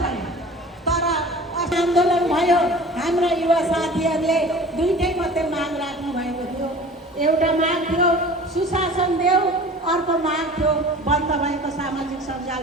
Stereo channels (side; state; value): both; normal; correlation 0.42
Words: भयो, तर आन्दोलन भयो हाम्रा युवा साथीहरूले दुईटै मात्रै माग राख्नु भएको थियो। एउटा माग थियो सुशासन देऊ, अर्को माग थियो बन्द भएको सामाजिक सञ्जाल